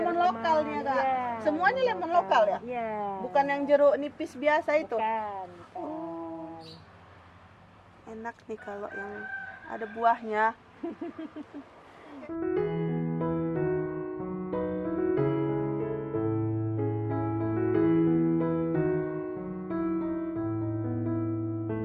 lokal nih ya, Kak. Iya, Semuanya lemon lokal ya? Iya. Bukan yang jeruk nipis biasa itu. Bukan. Enak nih kalau yang ada buahnya.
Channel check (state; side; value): identical; both; correlation 1.00